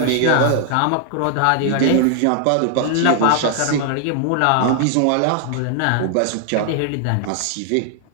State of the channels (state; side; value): different; both; correlation 0.00